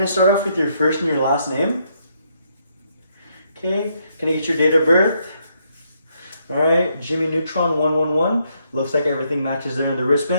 I start off with your first and your last name? Okay. Can I get your date of birth? Alright, Jimmy Neutron 111. Looks like everything matches there in the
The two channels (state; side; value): inverted; both; correlation -0.75